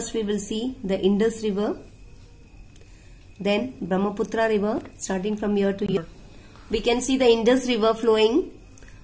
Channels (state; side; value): identical; both; correlation 1.00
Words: we will see the Indus River, then Brahmaputra River, starting from here to here. We can see the Indus River flowing,